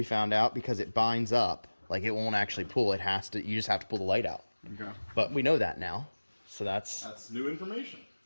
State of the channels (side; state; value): both; inverted; correlation -1.00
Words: found out, because it binds up. Like, it won't actually pull. It has to. You just have to pull the light out. Okay. But we know that now. So that's new information.